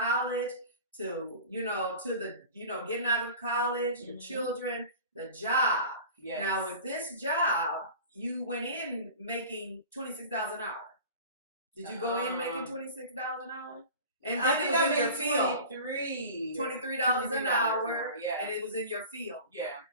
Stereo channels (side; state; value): both; inverted; correlation -0.38